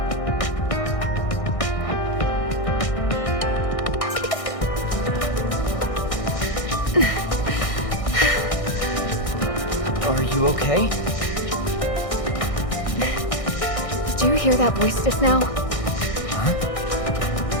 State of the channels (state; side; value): late; right; 1.6 ms